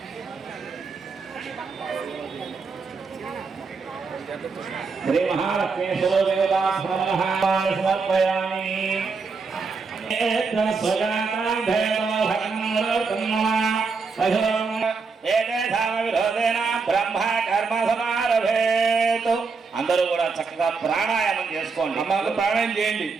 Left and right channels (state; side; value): quieter; left; 4.7 dB